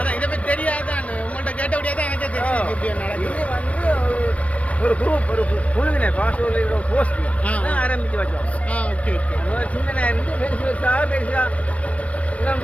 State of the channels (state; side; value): late; right; 0.065 ms